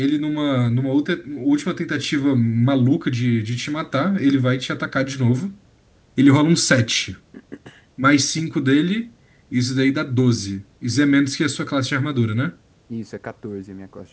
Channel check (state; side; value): identical; both; correlation 1.00